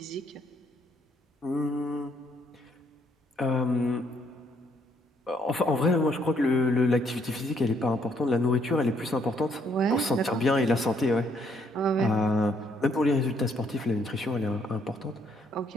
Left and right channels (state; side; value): normal; both; correlation 0.69